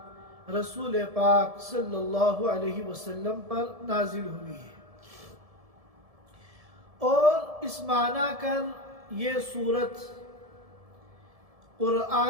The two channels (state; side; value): late; left; 1.7 ms